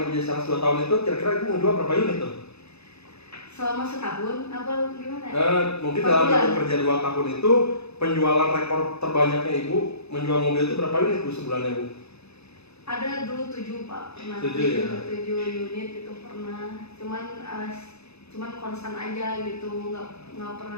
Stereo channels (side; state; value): right; late; 0.79 ms